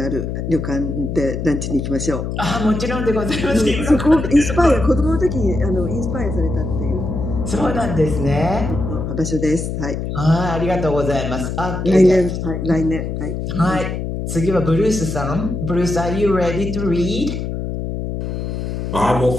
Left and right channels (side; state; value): left; noise; hum, 4 dB below the sound